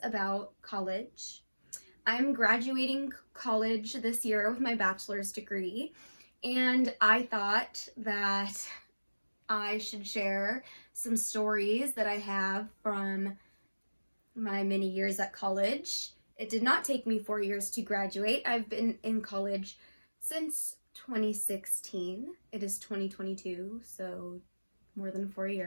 about college. I'm graduating college this year with my bachelor's degree, and I thought that I should share some stories that I have from my many years at college. It did not take me 4 years to graduate. I've been in college since 2016. It is 2022, so more than 4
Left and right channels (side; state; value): both; inverted; correlation -1.00